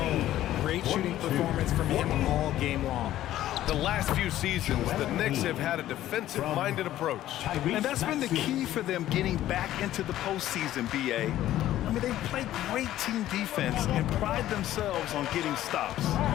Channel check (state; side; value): quieter; right; 13.5 dB